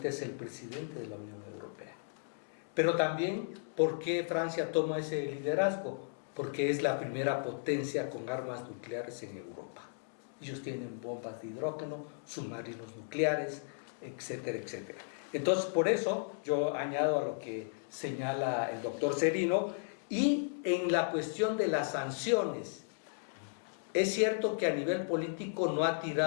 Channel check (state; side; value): silent; right; digital silence